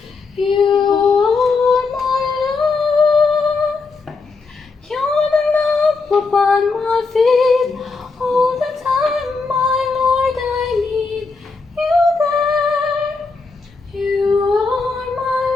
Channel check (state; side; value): quieter; right; 4.2 dB